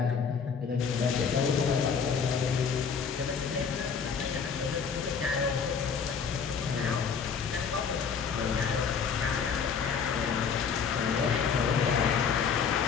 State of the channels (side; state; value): right; quieter; 6.3 dB